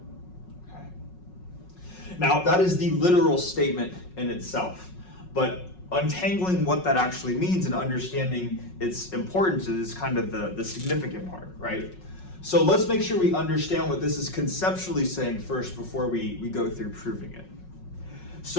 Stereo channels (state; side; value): late; right; 5.4 ms